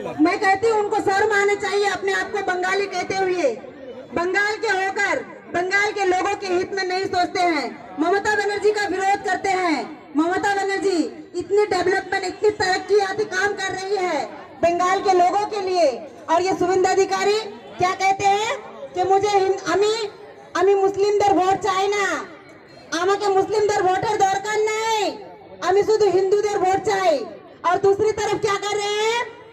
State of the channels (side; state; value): both; identical; correlation 1.00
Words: मैं कहती हूँ उनको शर्म आने चाहिए अपने आप को बंगाली कहते हुए। बंगाल के होकर बंगाल के लोगों के हित में नहीं सोचते हैं, ममता बनर्जी का विरोध करते हैं। ममता बनर्जी इतनी डेवलपमेंट, इतनी तरक्कीयाती काम कर रही है बंगाल के लोगों के लिए, और ये शुभेंदु अधिकारी क्या कहते हैं कि मुझे আমি মুসলিমদের ভোট চাই না, আমাকে মুসলিমদের ভোটের দরকার নেই, আমি শুধু হিন্দুদের ভোट চাই। और दूसरी तरफ क्या कर रहे हैं,